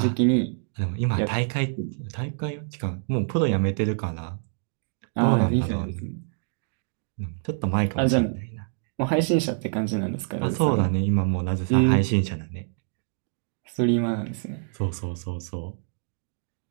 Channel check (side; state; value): left; silent; digital silence